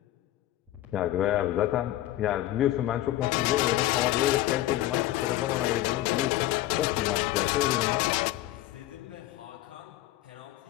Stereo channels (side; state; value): right; quieter; 15.1 dB